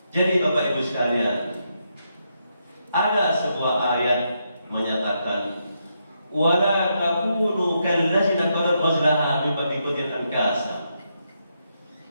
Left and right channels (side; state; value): both; inverted; correlation -0.81